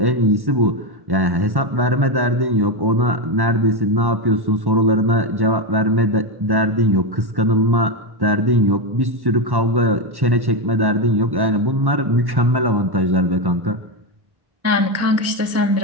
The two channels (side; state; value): left; late; 1.1 ms